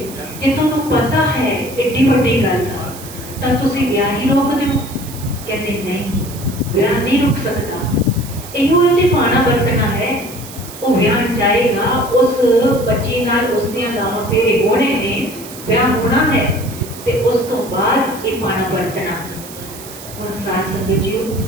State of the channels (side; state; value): right; noise; hiss, 15 dB below the sound